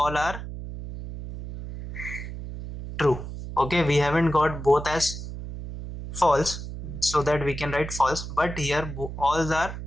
are true. Okay, we haven't got both as false, so that we can write false, but here all are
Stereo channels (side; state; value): right; noise; hum, 9 dB below the sound